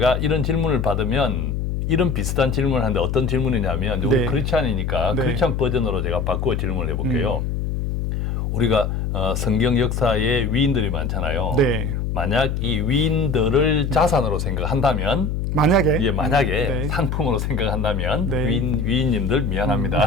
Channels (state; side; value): noise; left; hum, 1 dB below the sound